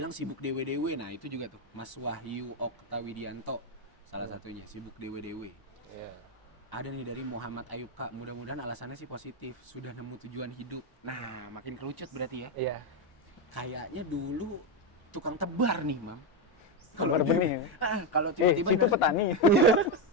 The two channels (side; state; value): right; late; 1.0 ms